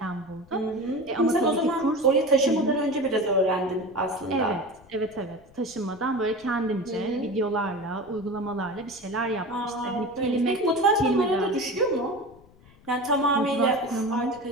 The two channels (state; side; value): noise; left; rumble, 26 dB below the sound